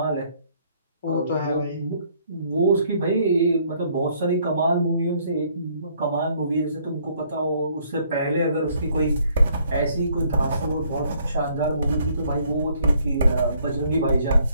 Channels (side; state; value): both; inverted; correlation -0.65